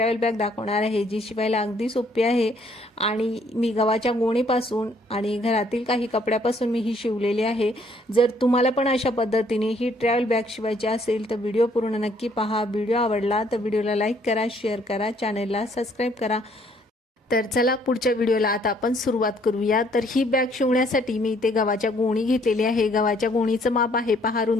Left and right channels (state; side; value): normal; both; correlation 0.65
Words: बॅग दाखवणार आहे, जी शिवायला अगदी सोपी आहे आणि मी गव्हाच्या गोणीपासून आणि घरातील काही कपड्यापासून मी ही शिवलेली आहे। जर तुम्हाला पण अशा पद्धतीने ही ट्रॅव्हल बॅग शिवायची असेल तर व्हिडिओ पूर्ण नक्की पहा। व्हिडिओ आवडला तर व्हिडिओला लाईक करा, शेअर करा, चॅनलला सबस्क्राईब करा। तर चला पुढच्या व्हिडिओला आता आपण सुरुवात करूया। तर ही बॅग शिवण्यासाठी मी इथे गव्हाच्या गोणी घेतलेली आहे। गव्हाच्या गोणीचं माप आहे पहा,